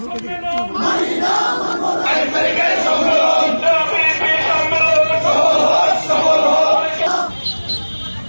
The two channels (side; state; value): both; inverted; correlation -1.00